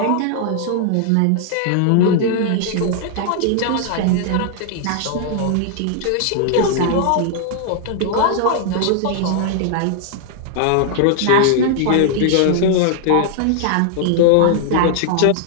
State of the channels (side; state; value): both; different; correlation -0.01